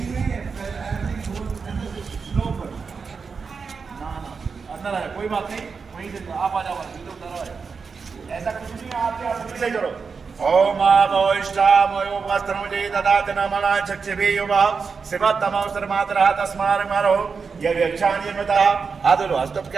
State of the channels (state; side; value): quieter; left; 5.3 dB